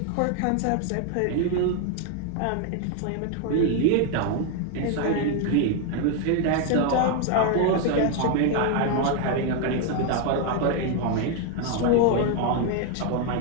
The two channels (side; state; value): both; different; correlation 0.01